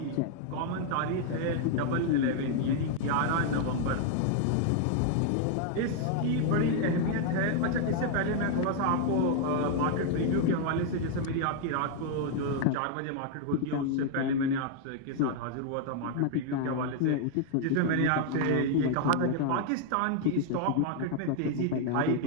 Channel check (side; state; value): both; different; correlation 0.00